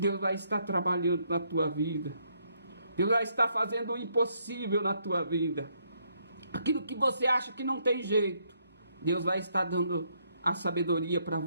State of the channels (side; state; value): both; inverted; correlation -0.73